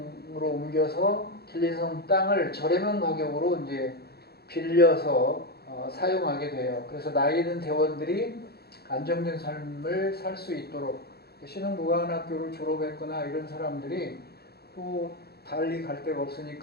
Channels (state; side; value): late; right; 0.46 ms